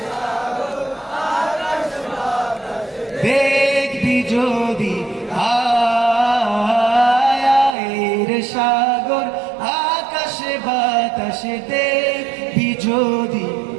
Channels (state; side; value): drops out; left; at 7.8 s